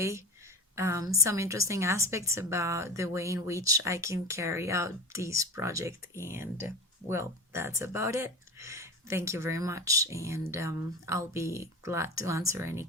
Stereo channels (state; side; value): normal; both; correlation 0.28